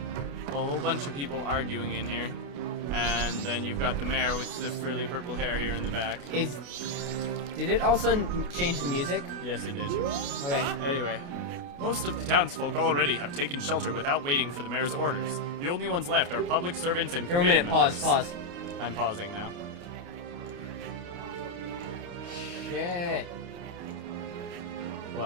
a whole bunch of people arguing in here. And then you've got the mayor with the frilly purple hair here in the back. Did it all of a sudden change the music? Yes, it did. Okay. Anyway, most of the townsfolk already have taken shelter without waiting for the mayor's orders. The only ones left are public servants and committee members. Pause. I'm pausing now. Shit.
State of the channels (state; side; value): late; left; 28 ms